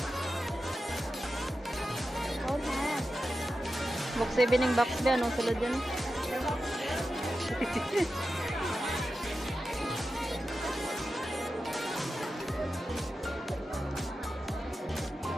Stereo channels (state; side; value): normal; both; correlation 0.91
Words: Box 7 yung box ba? Anong sulod yan?